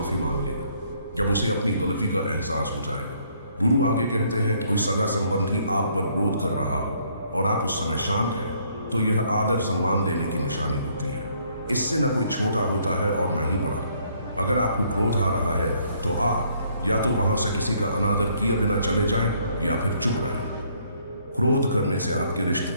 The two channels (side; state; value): both; inverted; correlation -0.66